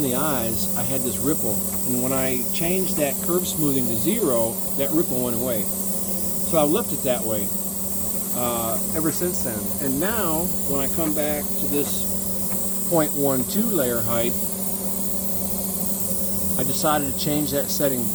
the eyes, I had this ripple. And when I changed that curve smoothing to 0, that ripple went away. So I left it that way ever since then. And now, when I come back to this 0.12 layer height, I decided to change that setting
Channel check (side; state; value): both; identical; correlation 1.00